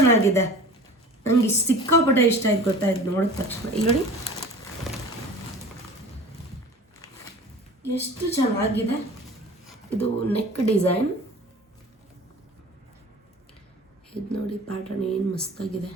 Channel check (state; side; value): normal; both; correlation 0.40